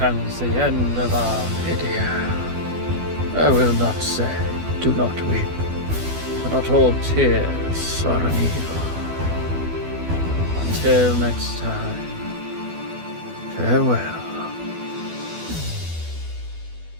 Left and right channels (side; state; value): left; late; 12 ms